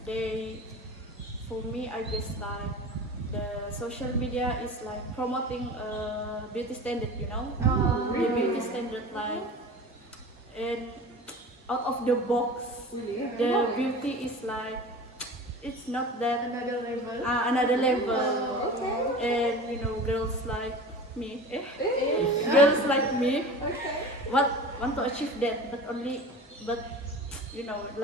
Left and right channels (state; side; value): normal; both; correlation 0.36